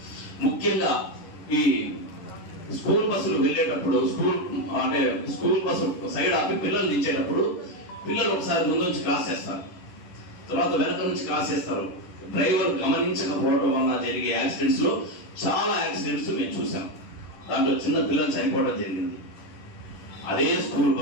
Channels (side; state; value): right; late; 11 ms